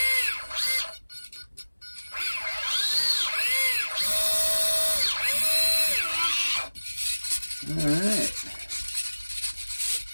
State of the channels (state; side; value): inverted; both; correlation -1.00